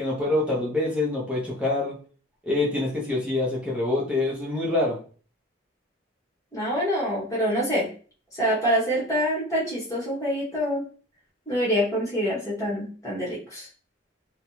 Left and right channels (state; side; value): normal; both; correlation 0.37